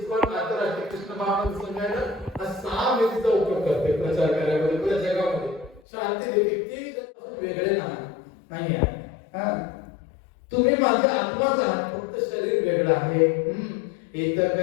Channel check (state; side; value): drops out; right; at 5.8 s